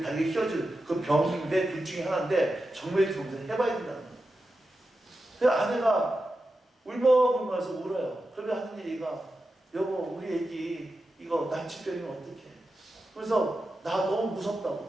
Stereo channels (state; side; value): normal; both; correlation 0.91